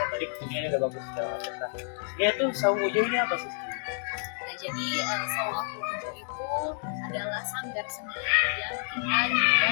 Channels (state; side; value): silent; right; 59 dB below the other